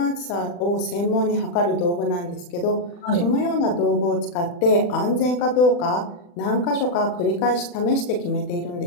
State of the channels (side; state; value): right; late; 40 ms